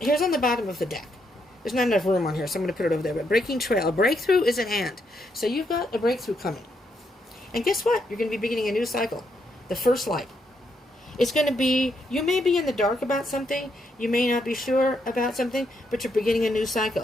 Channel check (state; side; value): normal; both; correlation 0.78